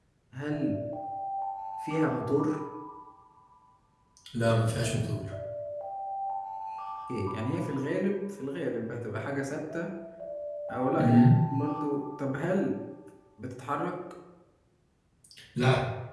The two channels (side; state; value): both; identical; correlation 1.00